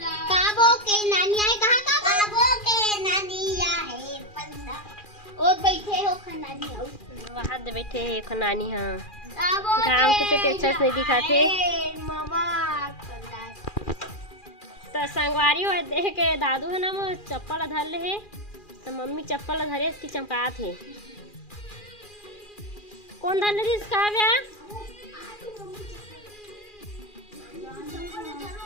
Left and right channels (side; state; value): right; late; 2.4 ms